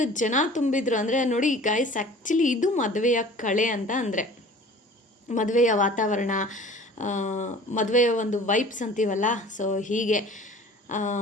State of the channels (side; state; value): both; normal; correlation 0.46